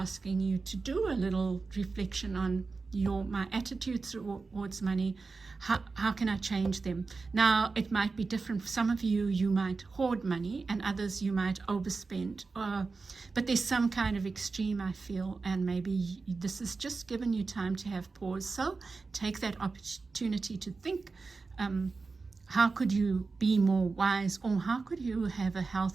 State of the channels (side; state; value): left; quieter; 4.2 dB